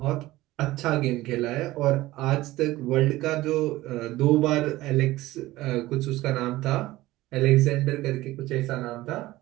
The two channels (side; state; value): left; quieter; 17.5 dB